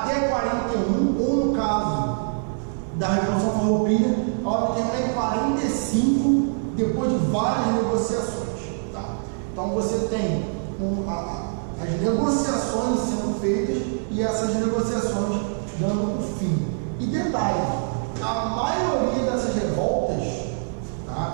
41, ou no caso da Revolução Farroupilha, ela vai terminar em 45, depois de várias negociações. Tá? Então você tem as negociações sendo feitas e essas negociações dando o fim. E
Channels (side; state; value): left; silent; digital silence